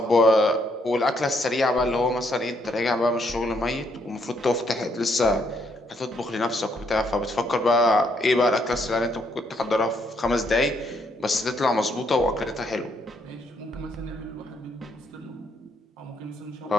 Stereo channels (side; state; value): both; normal; correlation 0.72